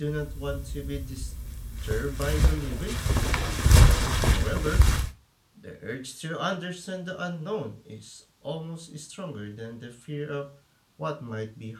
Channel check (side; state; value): both; identical; correlation 1.00